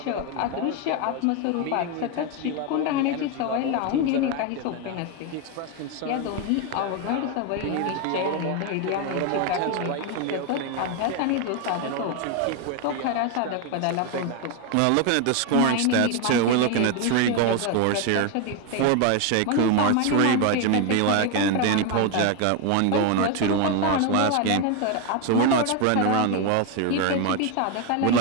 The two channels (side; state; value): both; different; correlation 0.02